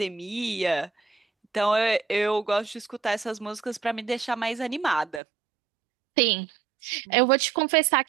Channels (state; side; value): drops out; left; at 5.2 s